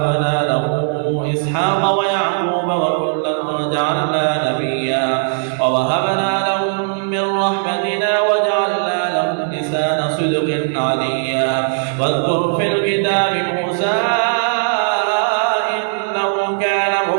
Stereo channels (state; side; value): silent; left; digital silence